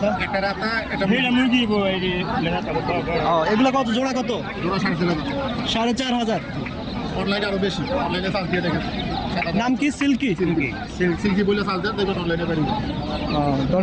রাতা, একটা মুরগি। ও, এগুলা কত জোড়া? কত জোড়া 4.5 4,500। অনলাইনে আরো বেশি, অনলাইনে চার্জ দিয়ে দেখেন। নাম কি? সিল্কি। সিল্কি বলে চার্জ দেন, দেখবেন অনলাইনে পারি।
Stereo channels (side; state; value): both; identical; correlation 1.00